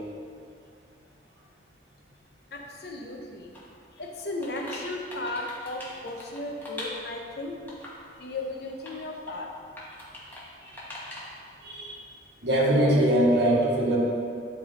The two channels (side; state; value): both; normal; correlation 0.45